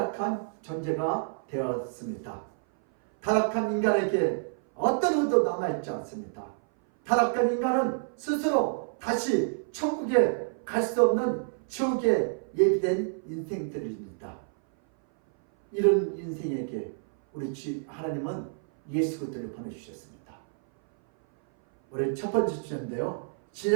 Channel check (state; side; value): silent; left; 57 dB below the other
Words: 존재가 되었습니다. 타락한 인간에게 어떤 의도 남아있지 않습니다. 타락한 인간은 스스로 다시 천국에 갈 수 없는 지옥에 예비된 인생들입니다. 이런 인생에게 우리 하나님은 예수 그리스도를 보내주셨습니다. 우리 첫 번째 주제인데요.